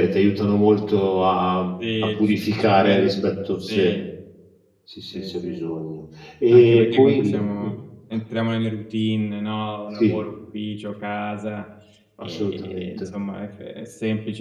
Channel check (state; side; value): identical; both; correlation 1.00